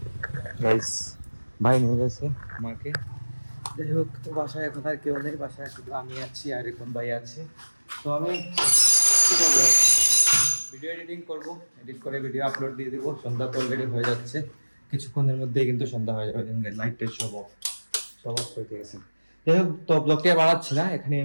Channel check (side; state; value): both; inverted; correlation -1.00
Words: গাইস ভাই নিয়ে গেছে মাকে। যাই হোক, তো বাসায় এখন আর কেউ নেই, বাসায় শুধু আমি আছি আর এখন ভাই আছে। তো আমি কি করবো, ভিডিও এডিটিং করবো, এডিট করে ভিডিও আপলোড দিয়ে দিব। সন্ধ্যা তো অলরেডি হয়ে যাচ্ছে, কিছুক্ষণের মধ্যেই কিন্তু সন্ধ্যা হয়ে যাবে। লাইটটা সব অফ করে দিয়েছে। যাই হোক, তো ব্লগটি বাড়াচ্ছি না, এখানে